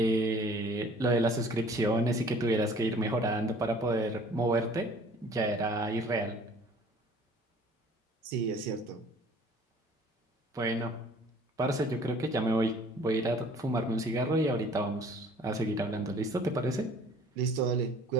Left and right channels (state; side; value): normal; both; correlation 0.52